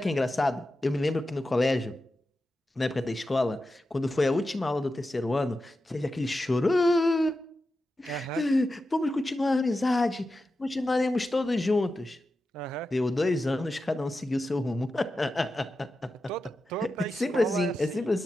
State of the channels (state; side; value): normal; both; correlation 0.91